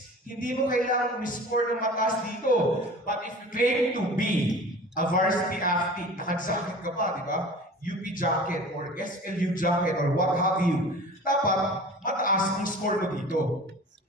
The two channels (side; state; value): both; normal; correlation 0.40